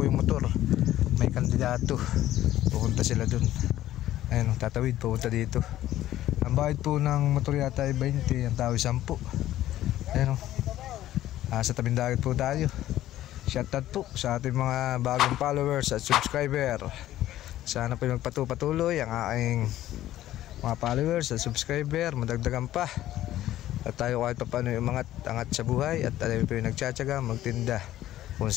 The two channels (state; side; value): quieter; right; 13.7 dB